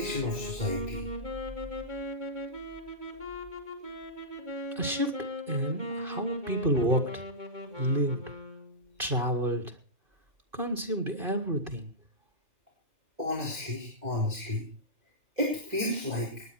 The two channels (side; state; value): left; late; 2.6 ms